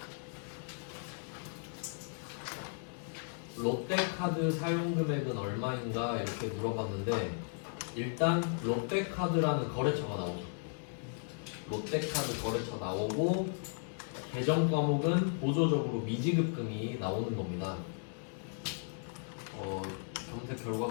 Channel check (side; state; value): right; silent; 54 dB below the other